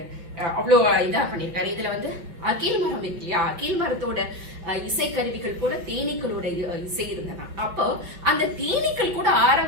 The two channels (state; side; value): late; left; 5.6 ms